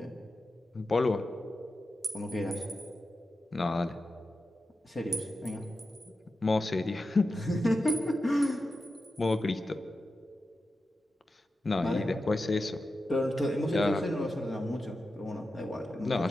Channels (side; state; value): both; normal; correlation 0.91